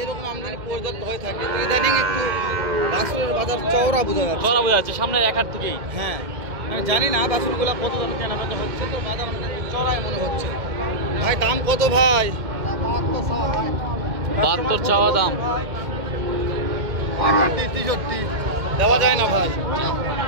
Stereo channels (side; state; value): left; late; 2.1 ms